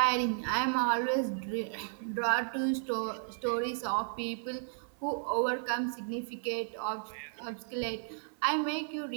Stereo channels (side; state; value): left; silent; 55 dB below the other